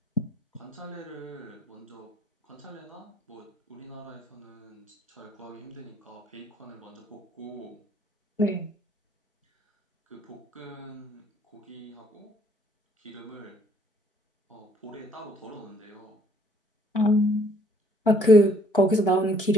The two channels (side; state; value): both; normal; correlation 0.63